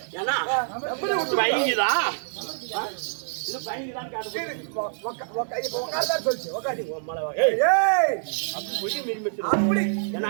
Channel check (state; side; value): silent; left; digital silence